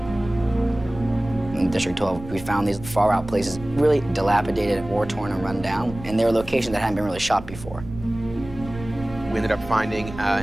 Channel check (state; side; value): noise; right; rumble, 14 dB below the sound